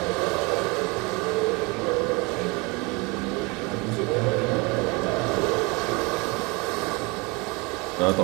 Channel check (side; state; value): left; quieter; 27.4 dB